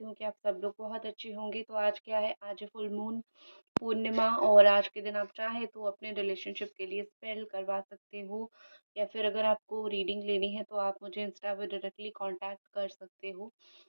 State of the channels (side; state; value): both; inverted; correlation -1.00